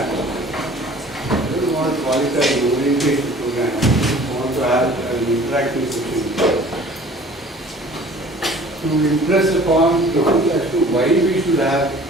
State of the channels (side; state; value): both; normal; correlation 0.49